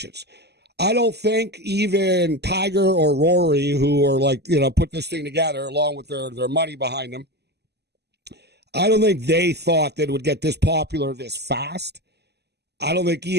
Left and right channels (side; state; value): left; late; 0.49 ms